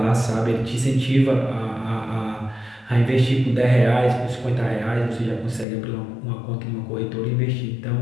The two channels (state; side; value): drops out; right; at 5.7 s